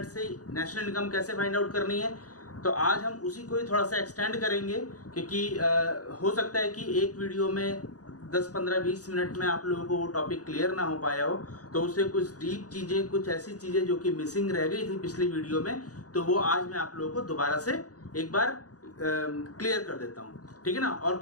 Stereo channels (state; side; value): late; right; 0.67 ms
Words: से नेशनल इनकम कैसे फाइंड आउट करनी है। तो आज हम उसी को ही थोड़ा सा एक्सटेंड करेंगे, क्योंकि हो सकता है कि एक वीडियो में 10, 15, 20 मिनट में आप लोगों को वो टॉपिक क्लियर ना हो पाया हो, तो उससे कुछ डीप चीजें, कुछ ऐसी चीजें जो कि मिसिंग रह गई थी पिछली वीडियो में, तो वो आज मैं आप लोगों को दोबारा से एक बार क्लियर कर देता हूँ, ठीक है ना। और